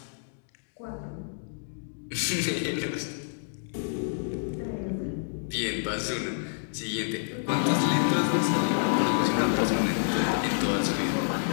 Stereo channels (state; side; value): silent; right; digital silence